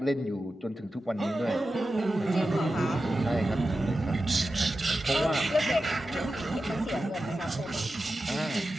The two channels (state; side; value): normal; both; correlation 0.92